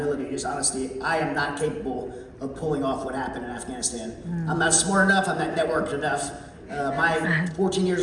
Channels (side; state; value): both; identical; correlation 1.00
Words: just honesty, I am not capable of pulling off what happened in Afghanistan. I'm not smart enough, I'm not networked enough. My 14 years